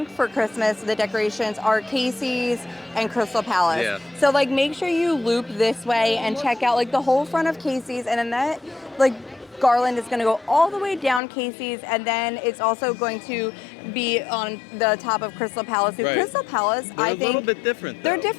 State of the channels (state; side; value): drops out; right; at 11.2 s